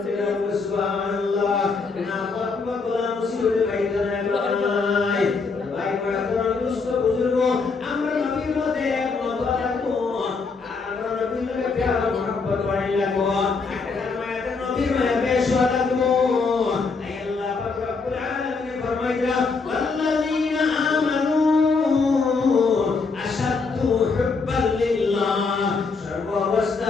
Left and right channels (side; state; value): right; quieter; 4.5 dB